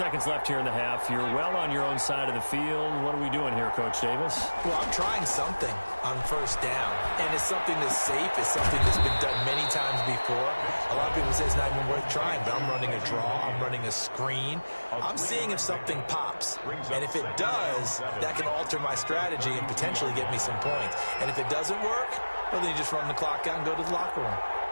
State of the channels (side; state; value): both; inverted; correlation -1.00